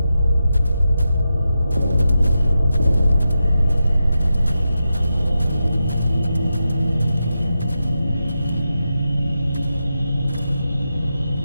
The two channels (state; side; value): inverted; both; correlation -0.89